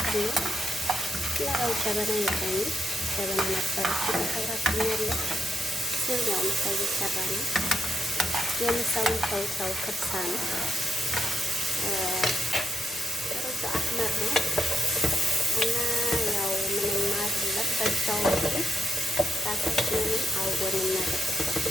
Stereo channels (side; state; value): both; normal; correlation 0.82